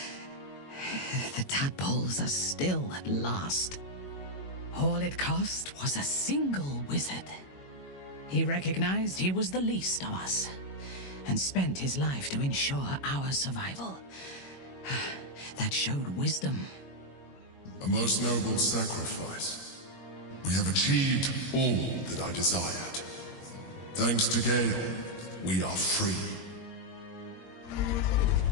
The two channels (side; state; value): right; late; 21 ms